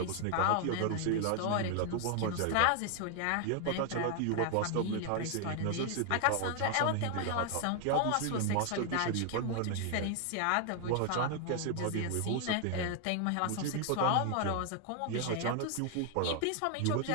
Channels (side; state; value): both; different; correlation 0.00